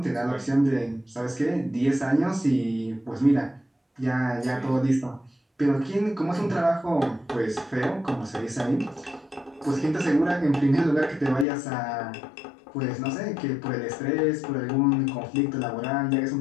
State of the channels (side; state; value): right; drops out; at 11.5 s